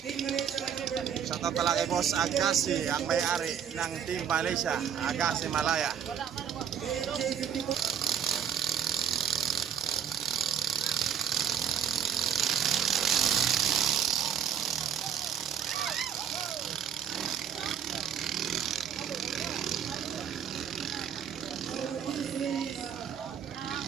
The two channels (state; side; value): quieter; left; 8.5 dB